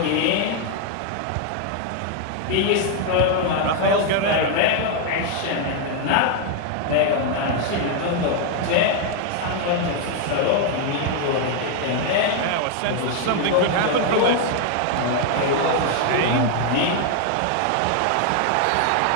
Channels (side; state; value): both; different; correlation 0.00